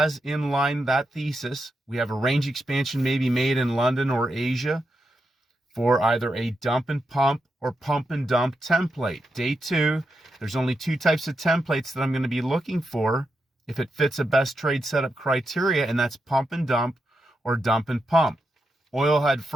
in line that thesis. We have a range expansion maybe made in London or Asia for either a dump and pump or pump and dump template. Day 2, there's only 2 types of templates that I'm going to be looking for if it fits a best trade setup criteria, and that's pump and dump or dump and pump. Oil had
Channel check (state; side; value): normal; both; correlation 0.86